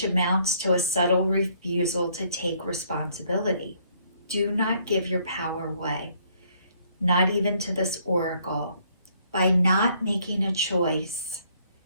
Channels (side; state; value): both; inverted; correlation -0.66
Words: amounts to a subtle refusal to take responsibility. Do not give your power away, not even to this oracle. By not making a choice,